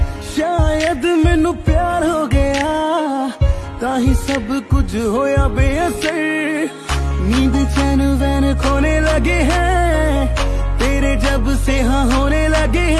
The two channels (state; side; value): identical; both; correlation 1.00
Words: शायद मैनू प्यार हो गया ताही सब कुछ होया बेअसर। नींद चैन वैन खोने लगे हैं तेरे जब से हाँ होने लगे